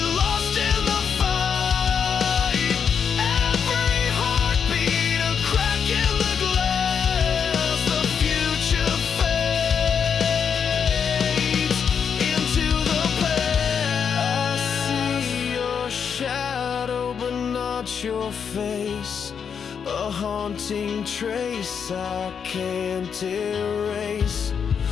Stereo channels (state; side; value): quieter; right; 6.9 dB